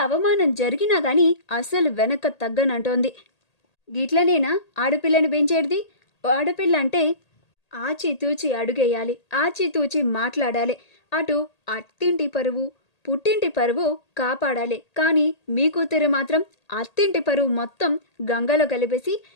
అవమానం జరిగినా కానీ అసలు వెనక తగ్గనంటోంది. గిట్లనేనా ఆడపిల్లని పెంచేది? ఆడపిల్ల అంటే ఆచితూచి అడుగేయాలి, ఆచితూచి మాట్లాడాలి. అటు అత్తింటి పరువు పుట్టింటి పరువు కాపాడాలి. కానీ మీ కూతురు మాత్రం అత్తింటి పరువు మొత్తం గంగలో కలిపేసి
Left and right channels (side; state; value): right; late; 1.8 ms